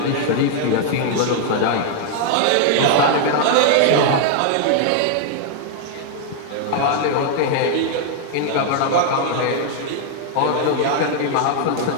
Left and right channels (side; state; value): both; different; correlation 0.00